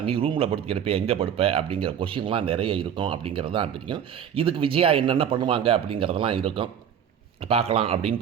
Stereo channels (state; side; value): quieter; left; 8.8 dB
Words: நீ ரூமில் படுத்து கிடப்பே எங்கே படுப்ப அப்படிங்கிற கொஷின்லாம் நிறைய இருக்கும் அப்படிங்கிறது தான் தெரியும். இதுக்கு விஜயா என்னென்ன பண்ணுவாங்க அப்படிங்கிறதெல்லாம் இருக்கும், பார்க்கலாம் அப்படின்னு